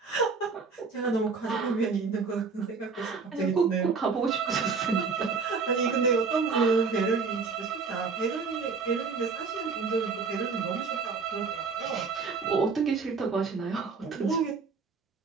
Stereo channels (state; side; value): quieter; left; 4.9 dB